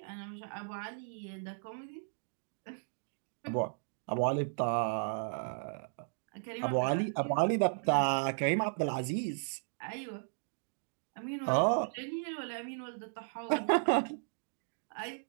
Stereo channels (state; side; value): silent; left; digital silence